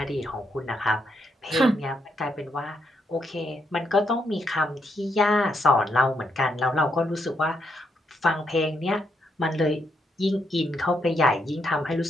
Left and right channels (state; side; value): normal; both; correlation 0.78